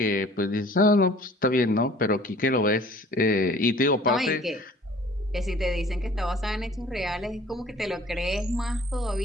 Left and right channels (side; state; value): both; normal; correlation 0.51